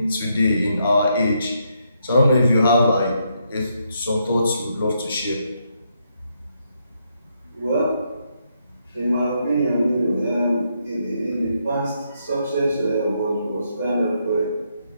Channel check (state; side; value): inverted; both; correlation -0.77